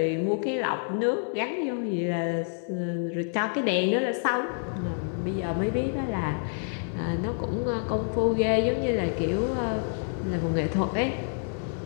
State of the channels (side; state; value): right; silent; digital silence